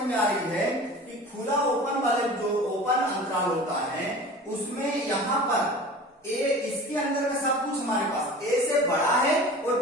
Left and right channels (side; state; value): both; normal; correlation 0.39